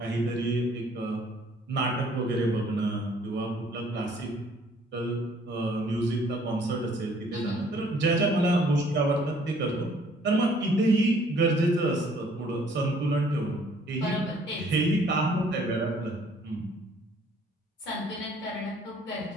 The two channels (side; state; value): both; normal; correlation 0.60